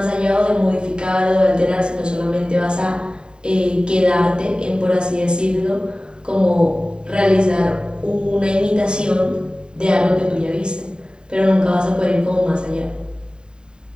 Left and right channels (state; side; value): late; left; 0.049 ms